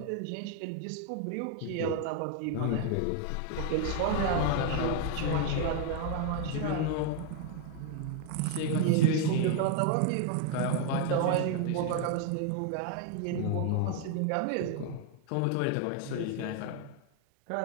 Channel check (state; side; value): different; both; correlation 0.00